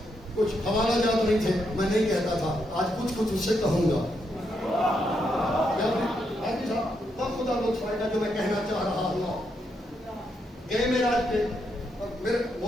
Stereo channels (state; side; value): normal; both; correlation 0.80